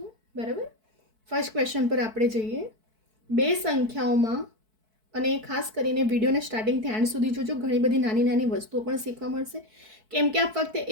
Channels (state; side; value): late; left; 4.6 ms